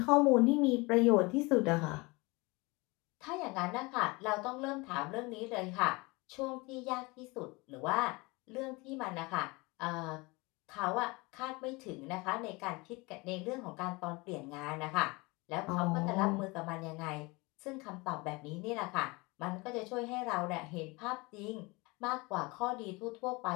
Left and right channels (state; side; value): quieter; right; 25.3 dB